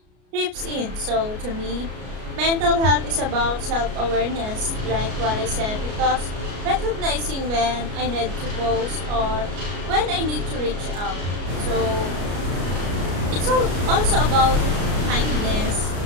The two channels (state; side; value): late; left; 33 ms